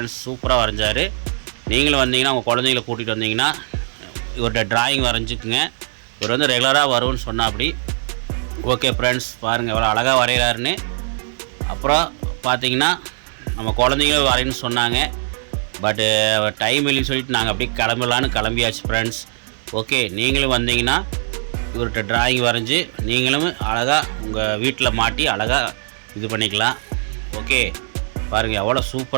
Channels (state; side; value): silent; left; digital silence